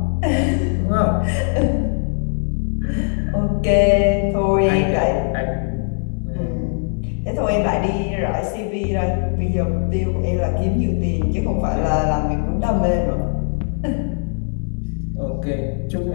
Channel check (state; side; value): silent; right; digital silence